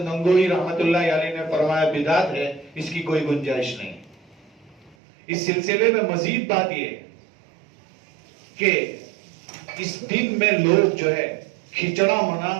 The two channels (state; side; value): drops out; left; at 5.0 s